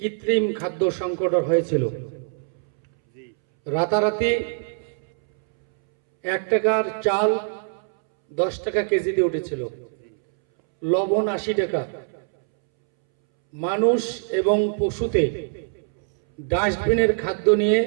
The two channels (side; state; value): left; silent; 63 dB below the other